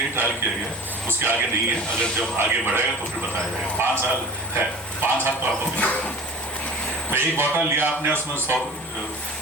ट्रायल किया गया, उसके आगे नहीं है। अगर जब आगे बढ़ेगा तो फिर बताया जाएगा। 5 साल है, 5 साल तो आपको मिलेगा। तो एक बॉटल लिया आपने, उसमें 100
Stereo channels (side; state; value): both; normal; correlation 0.39